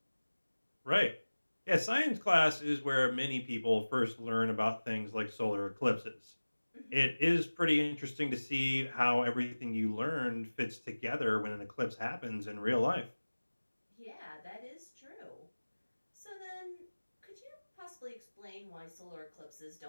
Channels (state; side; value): inverted; both; correlation -1.00